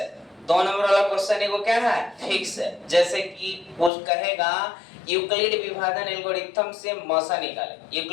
2 नंबर वाला क्वेश्चन एगो क्या है? फिक्स है। जैसे कि कुछ कहेगा यूक्लिड विभाजन एल्गोरिथम से मौसा निकाले।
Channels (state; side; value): drops out; right; at 3.9 s